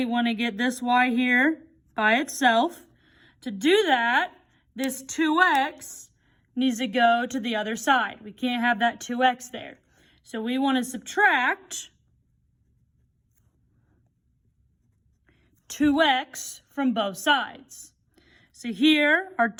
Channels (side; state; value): both; identical; correlation 1.00